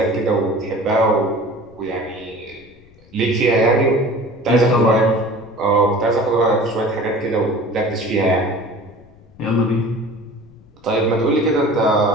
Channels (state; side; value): noise; left; rumble, 26 dB below the sound